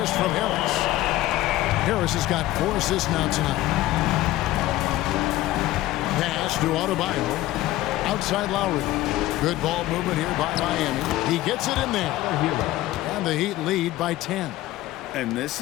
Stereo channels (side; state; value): right; quieter; 16.1 dB